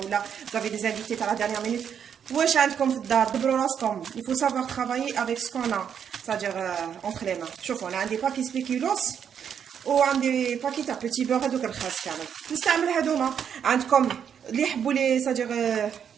ولا vous avez des invités à la dernière minute واش عندكم في الدار دبروا راسكم. il faut savoir travailler avec ce qu'on a c'est-à-dire entre les mains. شوفوا انا عندي باكي سبيكيلوس وعندي باكي تاع بوتي بور هذوك الخاص كامل نستعمل هذوما. عندكم اللي يحبوا لي c'est-à-dire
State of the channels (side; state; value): left; quieter; 8.1 dB